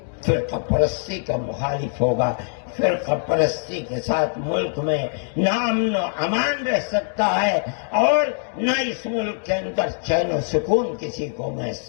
فرقہ پرستی کا مخالف ہوگا۔ فرقہ پرستی کے ساتھ ملک میں نہ امن و امان رہ سکتا ہے، اور نہ اس ملک کے اندر چین و سکون کسی کو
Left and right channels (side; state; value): right; silent; 57 dB below the other